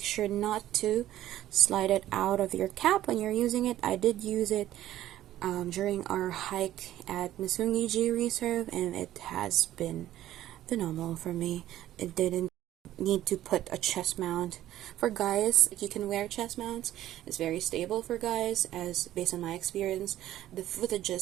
sure not to slide it out of your cap when you're using it. I did use it during our hike at Misungiji Reserve, and it has been phenomenal for me. It didn't need to put a chest mount. For guys, you can wear chest mounts. It's very stable for guys, as based on my experience. The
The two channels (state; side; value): quieter; left; 13.4 dB